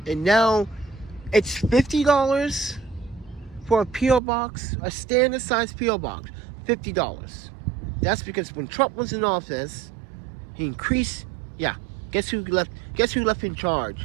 And now It's $50 for a P.O. box, a standard size P.O. box. $50. That's because when Trump was in office, he increased. Yeah, guess who left? Guess who left in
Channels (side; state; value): left; drops out; at 4.2 s